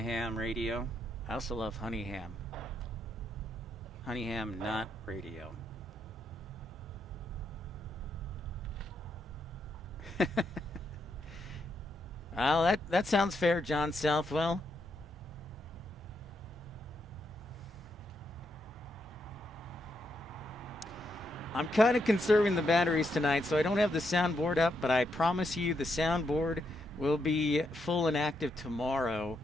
radio. I also love honey ham. Honeyham, not radio. Well, that sounds fair, John Southwell. I'm kind of conserving the batteries tonight, so I don't have the soundboard up, but I promise you the soundboard will be full and active tomorrow.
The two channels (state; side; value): normal; both; correlation 0.80